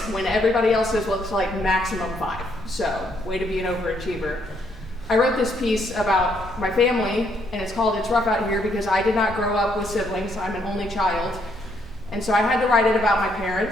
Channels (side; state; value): both; normal; correlation 0.72